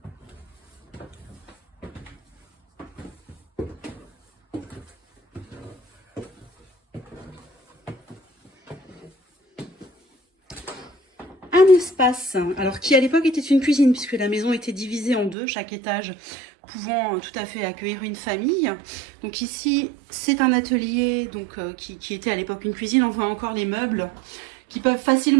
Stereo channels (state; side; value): drops out; left; at 15.4 s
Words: Un espace, alors qui à l'époque était une cuisine puisque la maison était divisée en deux, chaque étage pouvant tout à fait accueillir une famille. Donc ici, c'est un atelier donc, qui était à l'époque une cuisine. On voit encore les meubles qui peuvent